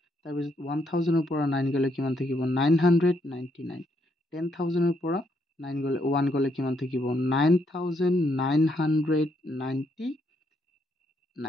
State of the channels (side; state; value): both; normal; correlation 0.75